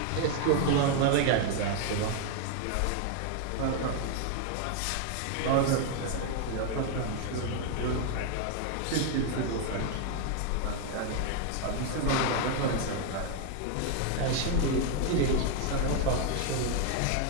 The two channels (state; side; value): different; both; correlation 0.01